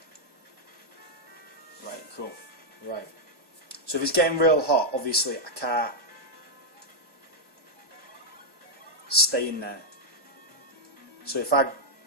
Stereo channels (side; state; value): left; late; 1.2 ms